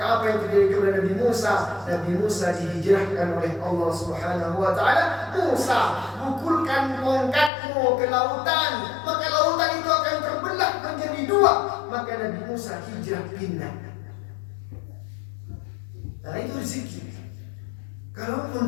apa yang terjadi kepada Nabi Musa? Nabi Musa dihijrahkan oleh Allah Subhanahu wa Ta'ala. Musa, pukulkan tongkatmu ke lautan, maka lautan itu akan terbelah menjadi dua. Maka Nabi Musa hijrah pindah. Nah, itu rezeki. Kalaupun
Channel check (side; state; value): right; drops out; at 7.5 s